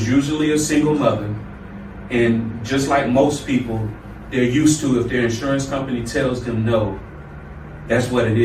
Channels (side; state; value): both; identical; correlation 1.00